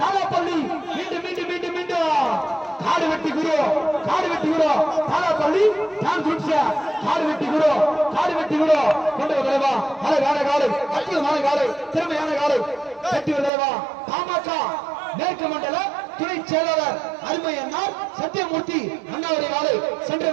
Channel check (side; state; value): left; drops out; at 13.5 s